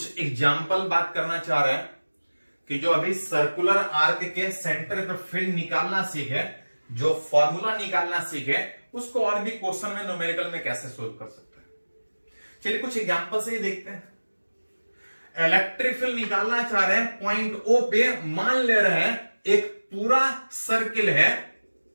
एग्जाम्पल बात करना चाह रहे हैं कि जो अभी सर्कुलर आर्क के सेंटर पे फील्ड निकालना सीखे, जो फॉर्मूला निकालना सीखे, उसको और भी क्वेश्चन में न्यूमेरिकल में कैसे सोल्व कर सकते हैं। चलिए कुछ एग्जाम्पल से ही देखते हैं। इलेक्ट्रिक फील्ड निकालना चाह रहे हैं, पॉइंट ओ पे मान ले रहे हैं एक पूरा सर्किल है,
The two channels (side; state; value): both; inverted; correlation -1.00